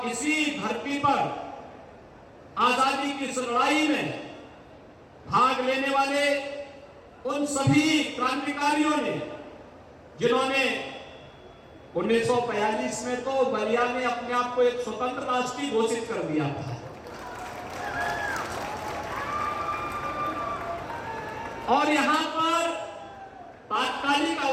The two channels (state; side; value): identical; both; correlation 1.00